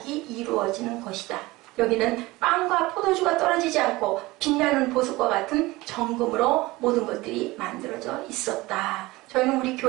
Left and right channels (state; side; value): quieter; left; 20.5 dB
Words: 이루어지는 것이다. 여기는 빵과 포도주가 떨어지지 않고 빛나는 보석과 같은 정금으로 모든 것들이 만들어져 있었다. 저희는 우리